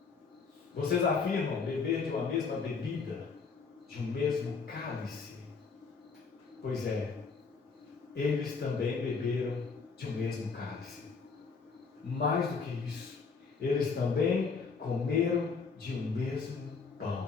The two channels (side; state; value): right; quieter; 5.0 dB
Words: vocês afirmam beber de uma mesma bebida, de um mesmo cálice. Pois é, eles também beberam de um mesmo cálice. Mais do que isso, eles também comeram de um mesmo